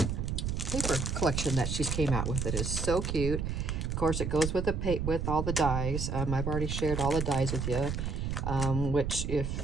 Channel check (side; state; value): right; noise; rumble, 2 dB below the sound